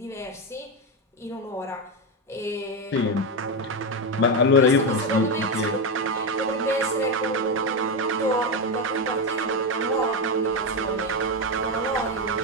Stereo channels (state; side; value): normal; both; correlation 0.10